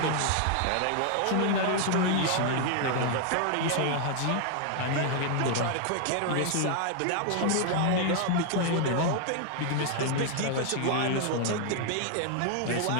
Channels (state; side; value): different; both; correlation 0.00